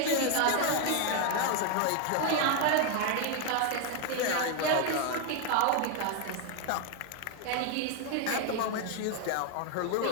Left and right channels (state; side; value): different; both; correlation 0.01